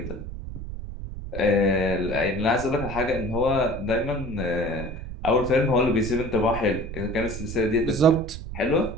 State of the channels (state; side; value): noise; right; rumble, 9 dB below the sound